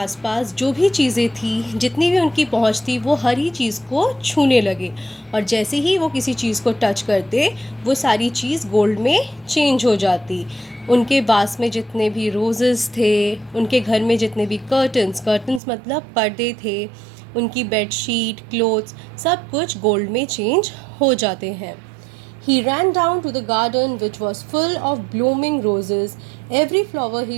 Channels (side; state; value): left; drops out; at 15.6 s